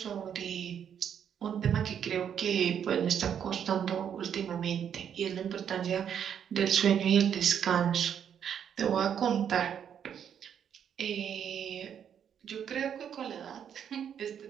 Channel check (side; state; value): left; quieter; 8.5 dB